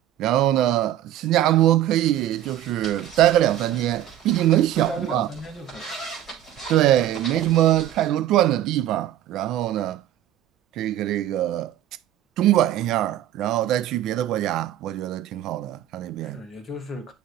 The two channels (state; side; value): quieter; left; 12.3 dB